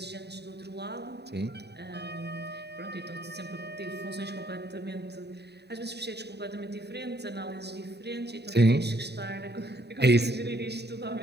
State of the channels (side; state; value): left; late; 0.48 ms